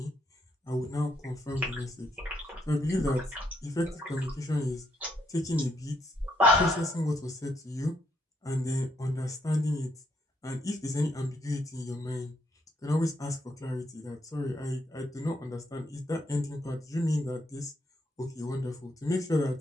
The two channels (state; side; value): normal; both; correlation 0.75